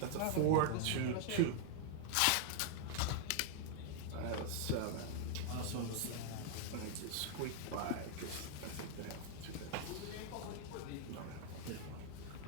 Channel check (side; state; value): both; different; correlation 0.00